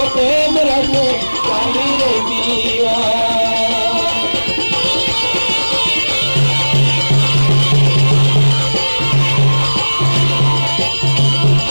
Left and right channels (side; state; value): both; inverted; correlation -1.00